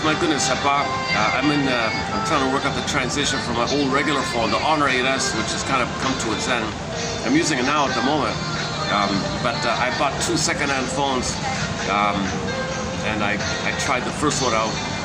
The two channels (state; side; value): identical; both; correlation 1.00